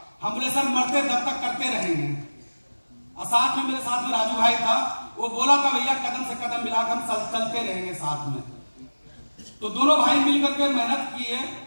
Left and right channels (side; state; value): both; inverted; correlation -1.00